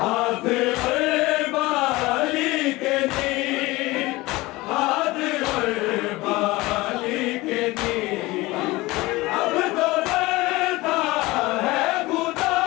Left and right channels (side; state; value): right; quieter; 20.6 dB